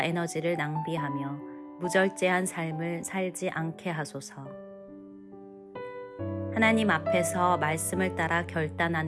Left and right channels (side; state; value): both; identical; correlation 1.00